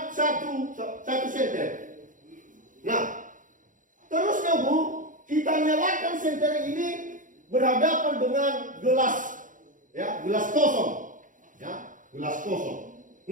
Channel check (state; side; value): late; left; 0.38 ms